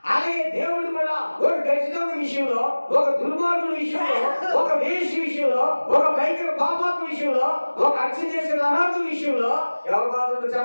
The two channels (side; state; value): both; inverted; correlation -1.00